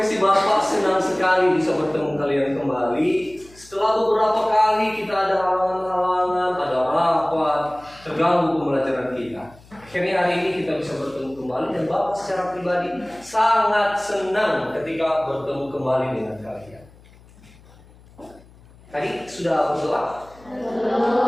Bapak senang sekali bisa bertemu kalian kembali. Setelah beberapa kali kita ada halangan-halangan, ada rapat, terganggu pembelajaran kita. Akhirnya hari ini kita bisa bertemu kembali dan Bapak secara pribadi sangat senang ketika bertemu kembali dengan kalian. Tadi sudah berdoa?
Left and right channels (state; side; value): noise; left; hum, 25 dB below the sound